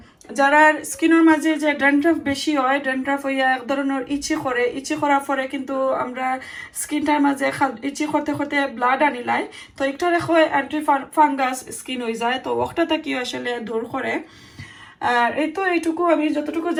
যারা স্কিনের মাঝে যে ড্যান্ড্রাফ বেশি হয়, ড্যান্ড্রাফ হইয়া এক ধরনের ইচি করে, ইচি করার পরে কিন্তু আমরা স্কিনটার মাঝে ইচি করতে করতে ব্লাড আনিলাই, তো একটা রেখো অ্যান্টি ফাঙ্গাস স্কিন হয়ে যায়, তো ওটাটা কি আসলে দূর করে। আর এই তো এইটুকু আমি যতটুকু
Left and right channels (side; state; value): both; identical; correlation 1.00